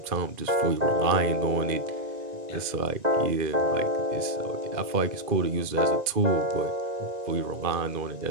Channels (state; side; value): late; left; 2.4 ms